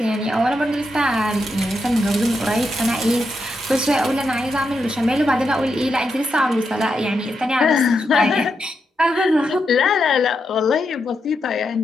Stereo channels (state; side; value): normal; both; correlation 0.84